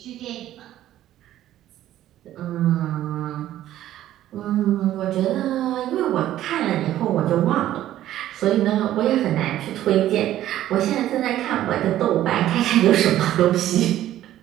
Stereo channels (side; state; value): left; quieter; 13.1 dB